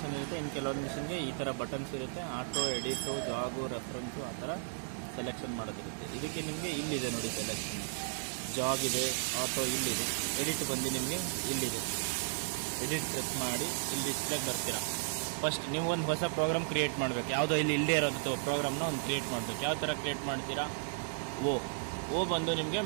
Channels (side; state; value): left; silent; digital silence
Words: ಇರುತ್ತೆ, ಇನ್ನು ಕೆಲವೊಂದು ಮಿಷಿನ್ಗೆ ಈ ಥರ ಬಟನ್ಸ್ ಇರುತ್ತೆ. ಆಟೋ, ಎಡಿಟು, ಜಾಗು, ರೆಫರೆನ್ಸು ಆ ಥರ ಸೆಲೆಕ್ಷನ್ ಮಾಡೋದಿರುತ್ತೆ. ಇದಕ್ಕೆ ನಿಮಗೆ ಇಲ್ಲಿದೆ ನೋಡಿ ಸೆಲೆಕ್ಷನ್, ಜಾಗ್ ಇದೆ, ಆಟೋ ಇಲ್ಲಿದೆ, ಎಡಿಟ್ ಬಂದು ನಿಮಗೆ ಇಲ್ಲಿದೆ. ಎಡಿಟ್ ಪ್ರೆಸ್ ಮಾಡಿ ಇಲ್ಲಿ ಡಿಸ್ಪ್ಲೇಗೆ ಬರ್ತೀರಾ. ಫಸ್ಟ್ ನೀವು ಒಂದು ಹೊಸ ಪ್ರೋಗ್ರಾಮ್ ಕ್ರಿಯೇಟ್ ಮಾಡಬೇಕು. ಯಾವುದೋ ಇಲ್ಲಿ ಇಲ್ಲದೇ ಇರೋದು ಪ್ರೋಗ್ರಾಮ್ನ ಒಂದು ಕ್ರಿಯೇಟ್ ಮಾಡಬೇಕು. ಯಾವ ಥರ ಕ್ರಿಯೇಟ್ ಮಾಡ್ತೀರಾ, ಓ ಬಂದು ನಿಮಗೆ